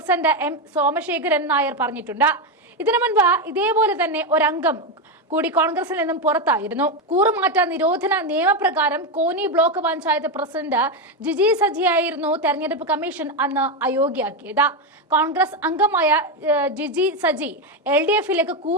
M സോമശേഖരൻ നായർ പറഞ്ഞിട്ടുണ്ട്. ഇതിനു മുൻപ് ഇതേപോലെ തന്നെ ഒരംഗം കൂടി കോൺഗ്രസിൽ നിന്നും പുറത്തായിരുന്നു. കൂറുമാറ്റ നിരോധന നിയമപ്രകാരം കോന്നി ബ്ലോക്ക് പഞ്ചായത്ത് പ്രസിഡന്റ് ജിജി സജിയായിരുന്നു തെരഞ്ഞെടുപ്പ് കമ്മീഷൻ അന്ന് അയോഗ്യയാക്കിയത്. കോൺഗ്രസ് അംഗമായ ജിജി സജി LDF-ലേക്ക്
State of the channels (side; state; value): both; normal; correlation 0.09